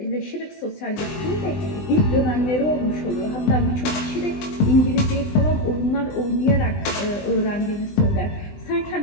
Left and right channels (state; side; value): late; right; 20 ms